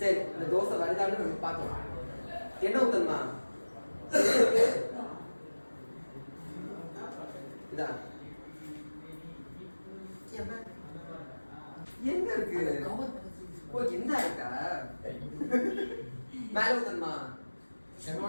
இந்த தோசை வருதான்னு நம்ம பார்க்கலாம். என்ன ஊத்தணுமா? இதான் எங்க இருக்கு? ஓ என்ன இருக்கா? மேல ஊத்தணுமா?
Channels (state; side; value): inverted; both; correlation -1.00